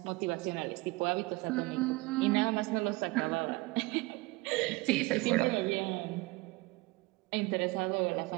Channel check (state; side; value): quieter; left; 23.0 dB